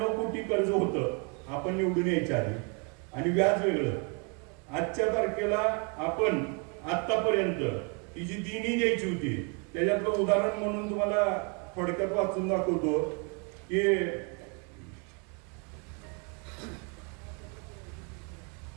कोटी कर्ज होतं आपण निवडून यायच्या आधी आणि व्याज वेगळं. आजच्या तारखेला आपण आतापर्यंत ही जी देणी द्यायची होती त्याच्यातलं उदाहरण म्हणून तुम्हाला थोडक्यात वाचून दाखवतो की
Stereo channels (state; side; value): quieter; left; 35.2 dB